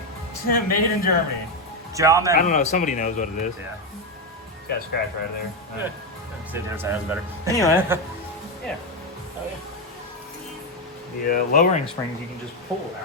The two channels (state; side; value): normal; both; correlation 0.07